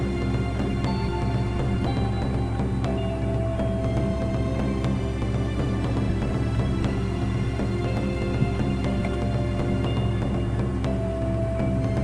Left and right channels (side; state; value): both; identical; correlation 1.00